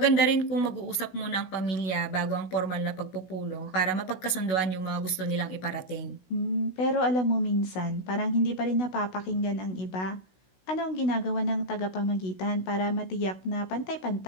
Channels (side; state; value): right; late; 16 ms